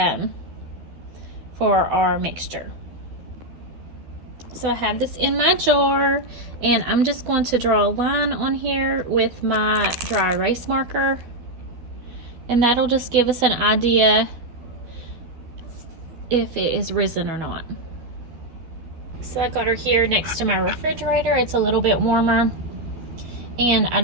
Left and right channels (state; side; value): late; left; 12 ms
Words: for our mixture. So I have this in my jar, and I'm just going to draw a line on here with my dry erase marker, and that'll just give us an idea if it is risen or not. So I got her here next to my refrigerator. It's a little bit warmer, and I